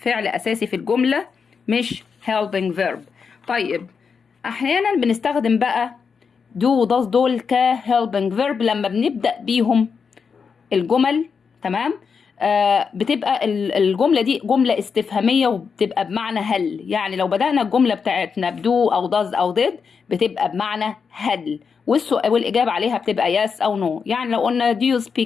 اساسي في الجمله مش helping verb. طيب احيانا بنستخدم بقى do و does دول ك helping verb لما بنبدأ بيهم الجمل. تمام، بتبقى الجملة دي جملة استفهامية وبتبقى بمعنى هل، يعني لو بدأنا الجملة بتاعتنا بدو أو does أو did بتبقى بمعنى هل، والسؤال والإجابة عليها بتبقى yes أو no. يعني لو قلنا do you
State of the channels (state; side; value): quieter; right; 5.8 dB